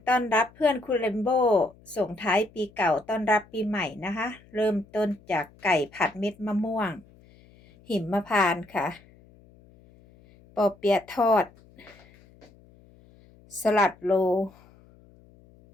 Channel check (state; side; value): noise; left; hum, 27 dB below the sound